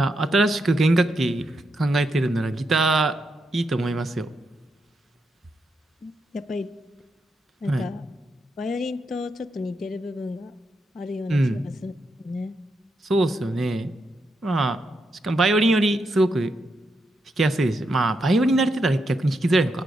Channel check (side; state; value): both; normal; correlation 0.83